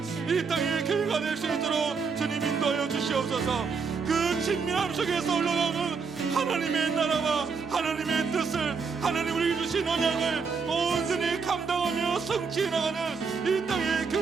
이 땅의 교회가 될 수 있도록 주님 인도하여 주시옵소서. 그 친밀함 속에서 흘러나오는 하나님의 나라와 하나님의 뜻을, 하나님 우리에게 주신 언약을 온전히 감당하며 성취해 나가는 이 땅의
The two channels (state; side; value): quieter; left; 5.2 dB